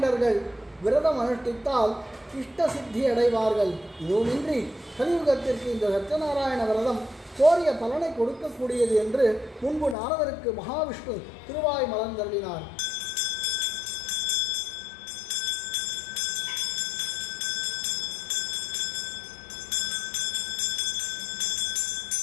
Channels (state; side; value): drops out; right; at 10.0 s